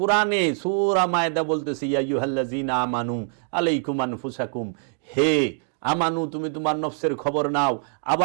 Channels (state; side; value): silent; left; 62 dB below the other